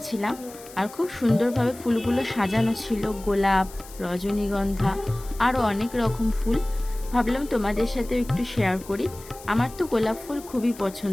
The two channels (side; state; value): left; noise; hiss, 19 dB below the sound